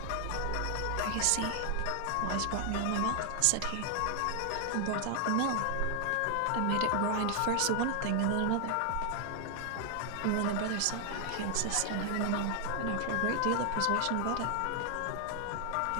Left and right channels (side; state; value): both; different; correlation 0.00